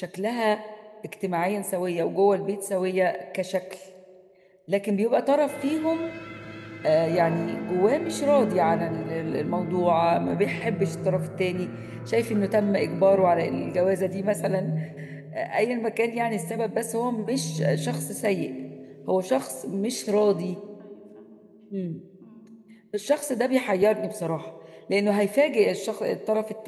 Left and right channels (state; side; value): identical; both; correlation 1.00